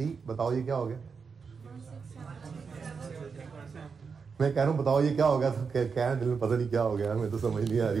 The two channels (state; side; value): quieter; left; 5.5 dB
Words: बताओ ये क्या हो गया? मैं कह रहा हूं बताओ ये क्या हो गया, तो कह रहे हैं दिल में पता नहीं क्या हो गया, मैं तो समझ नहीं आ